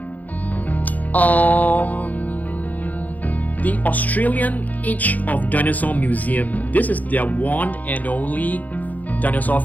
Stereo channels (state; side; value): late; right; 0.080 ms